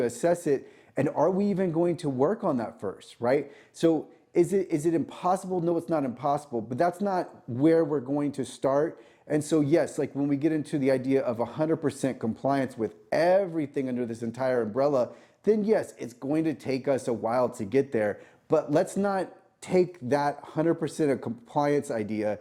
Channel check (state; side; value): identical; both; correlation 1.00